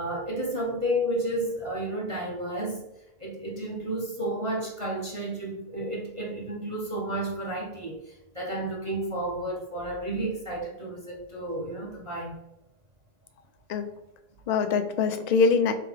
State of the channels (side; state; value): left; late; 1.5 ms